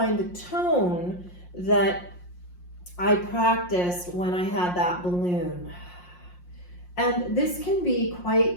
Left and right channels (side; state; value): right; late; 5.6 ms